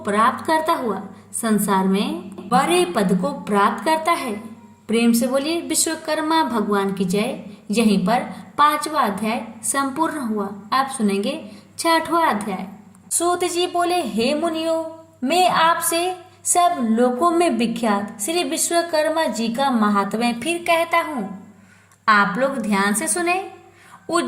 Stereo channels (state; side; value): identical; both; correlation 1.00